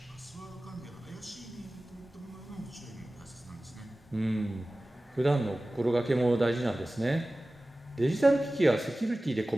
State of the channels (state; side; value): normal; both; correlation 0.97